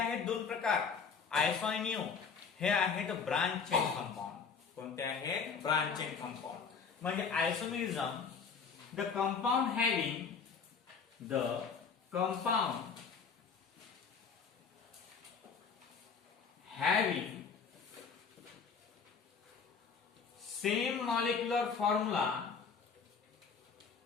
2 प्रकार आयसो आणि न्यू हे आहेत ब्रांच चेन कंपाऊंड. कोणते आहेत? Branch chain compound. म्हणजे isomerism the compound having same molecular formula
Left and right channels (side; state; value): right; quieter; 5.8 dB